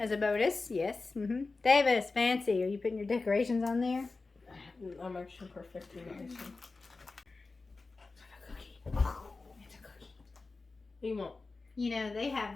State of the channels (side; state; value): right; quieter; 3.8 dB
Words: a bonus. Yes. Davis, fancy. Are you putting your decorations on there? I'm actually perfecting the icing. It's a cookie. It's a cookie. What do you want? You know, they have